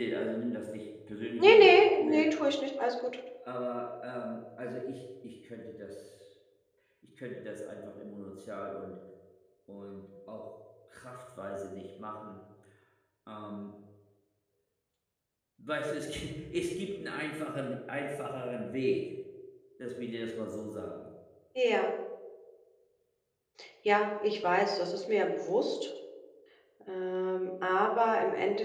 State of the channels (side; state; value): both; identical; correlation 1.00